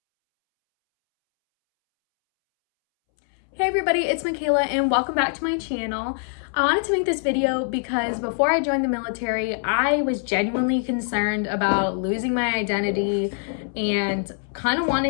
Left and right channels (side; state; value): right; silent; 63 dB below the other